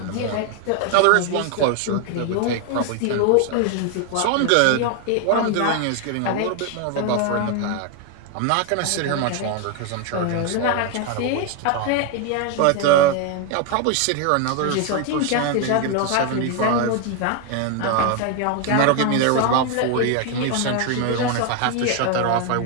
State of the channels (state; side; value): different; both; correlation 0.01